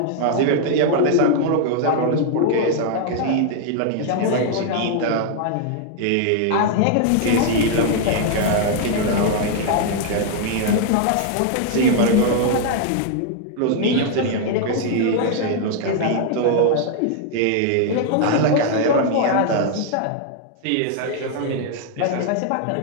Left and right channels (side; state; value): both; different; correlation 0.00